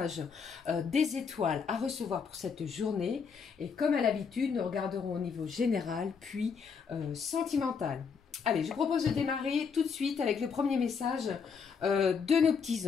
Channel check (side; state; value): right; quieter; 5.9 dB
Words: des étoiles à recevoir pour cette journée. Et comme à l'habitude, nous regarderons au niveau général, puis sentimental. Allez, je vous propose de démarrer tout de suite avec le premier message de nos petits